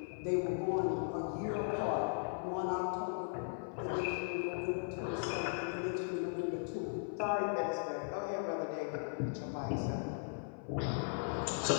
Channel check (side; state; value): right; silent; 52 dB below the other